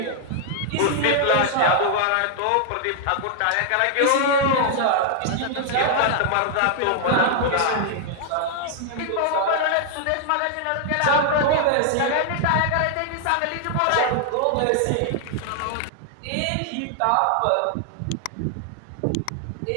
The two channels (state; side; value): different; both; correlation 0.00